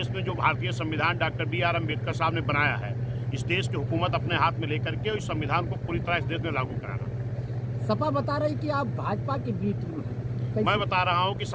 में जो भारतीय संविधान डॉक्टर B.R. अम्बेडकर साहब ने बनाया है, इस देश की हुकूमत अपने हाथ में लेकर के इस संविधान को पूरी तरह इस देश में लागू कराना। सपा बता रही कि आप भाजपा की बी टीम हैं। मैं बता रहा हूं कि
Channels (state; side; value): identical; both; correlation 1.00